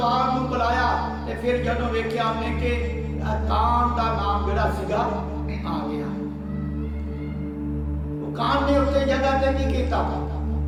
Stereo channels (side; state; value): both; identical; correlation 1.00